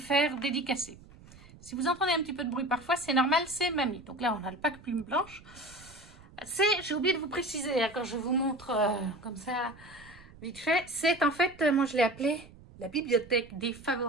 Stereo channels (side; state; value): right; noise; rumble, 21 dB below the sound